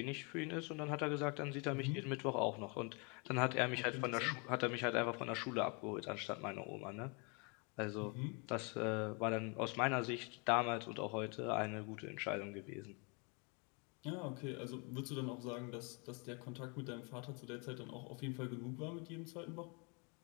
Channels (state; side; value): quieter; right; 33.3 dB